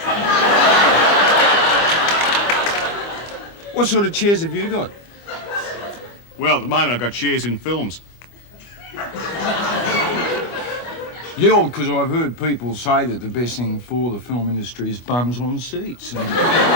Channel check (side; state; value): right; late; 25 ms